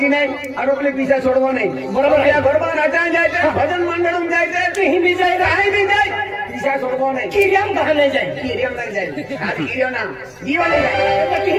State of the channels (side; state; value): both; identical; correlation 1.00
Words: नहीं और अपने पीछे छोड़वा नहीं बराबर या घरबा नाचा जाए भजन मंडल में जाए कहीं भी जाए रहाई भी जाए पीछे छोड़वा नहीं कीरियम कहां ले जाए कीरियम लग जाए हां कीरियम ना जीवा ले जाए तो